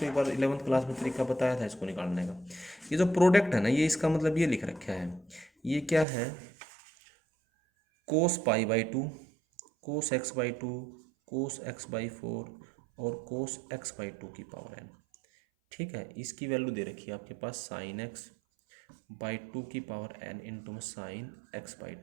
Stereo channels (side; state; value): left; drops out; at 6.1 s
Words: एक बार 11th क्लास में तरीका बताया था इसको निकालने का। ये जो प्रोडक्ट है ना, ये इसका मतलब ये लिख रखा है, ये क्या है, cos pi by two, cos x by two, cos x by four और कोस एक्स बाई टू की पावर एन। ठीक है, इसकी वैल्यू दे रखी है आपके पास साइन एक्स बाई टू की पावर एन इंटू में साइन एक्स बाई